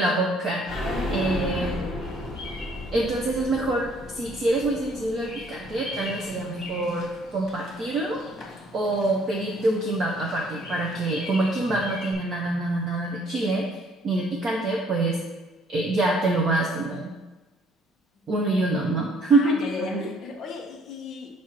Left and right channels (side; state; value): both; normal; correlation 0.61